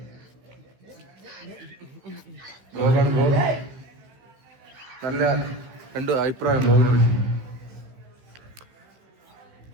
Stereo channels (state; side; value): late; left; 15 ms